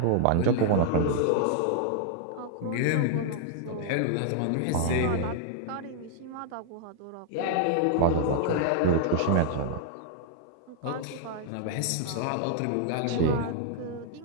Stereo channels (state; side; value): different; both; correlation -0.01